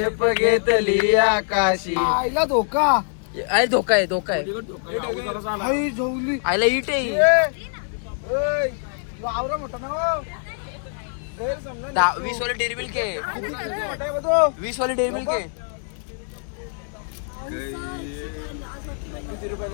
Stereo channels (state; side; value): silent; right; digital silence